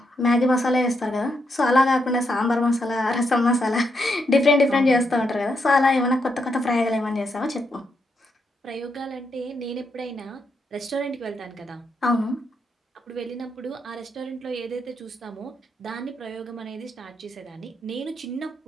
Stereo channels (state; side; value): normal; both; correlation 0.80